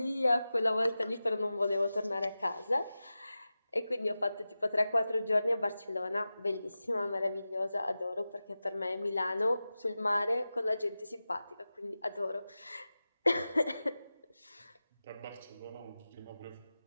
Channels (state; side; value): inverted; both; correlation -0.95